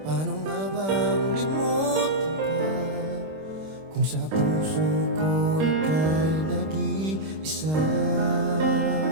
paano nga bang limutin ka kung sa puso ko ika'y nag-iisa?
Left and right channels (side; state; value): left; late; 26 ms